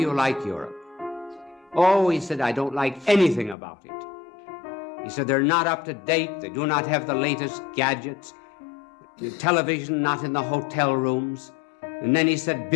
like Europe?" "Oh," he said, "I don't like anything about it." He said, "They're not up to date. They do not have the latest gadgets. The television not in the hotel rooms." And then he said,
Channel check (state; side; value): drops out; right; at 3.6 s